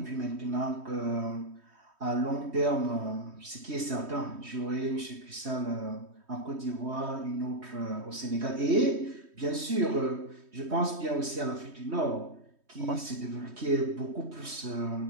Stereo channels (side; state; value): left; late; 3.2 ms